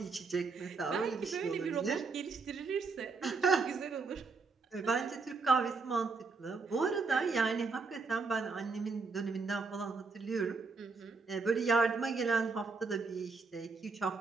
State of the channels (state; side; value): quieter; left; 4.4 dB